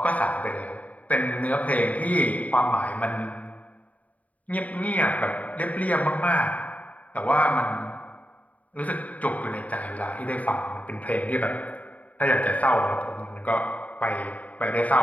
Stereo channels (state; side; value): late; right; 0.071 ms